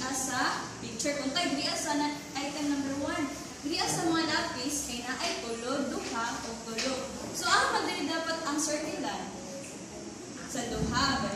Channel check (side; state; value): both; identical; correlation 1.00